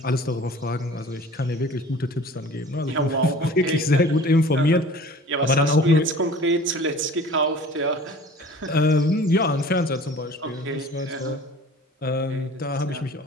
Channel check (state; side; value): normal; both; correlation 0.45